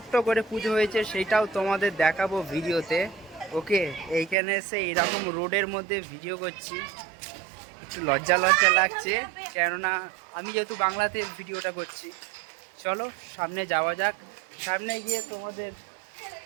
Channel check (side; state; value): left; drops out; at 4.4 s